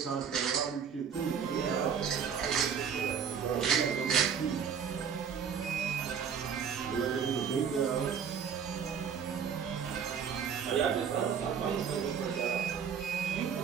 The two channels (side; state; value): left; quieter; 7.2 dB